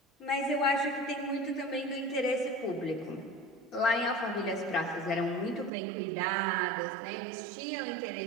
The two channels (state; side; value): drops out; left; at 5.7 s